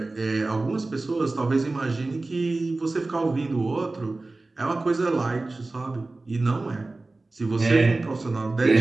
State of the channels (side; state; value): left; quieter; 3.2 dB